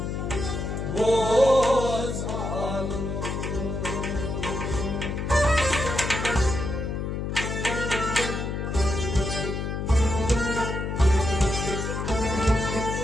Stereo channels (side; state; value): left; noise; hum, 3 dB below the sound